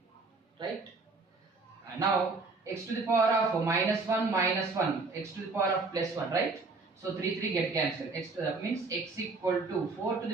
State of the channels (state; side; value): quieter; left; 3.8 dB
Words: Right? Now x to the power of minus 1, x to the power of plus 1. Right? So 3 get cancelled. X means x equal to 4 to